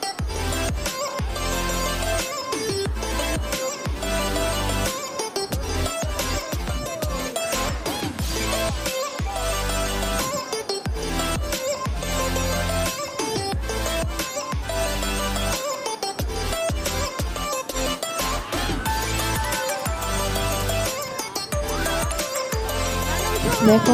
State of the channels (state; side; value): identical; both; correlation 1.00